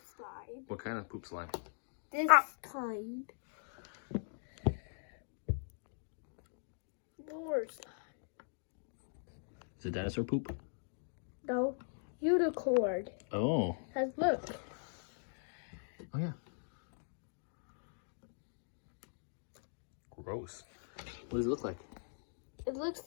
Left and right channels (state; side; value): silent; right; digital silence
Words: slime. What kind of poop slime? This kind. More slime. Is it dinosaur poop? No, unicorn. Oh. Cause look. Oh yeah. Gross. What does it look like? It looks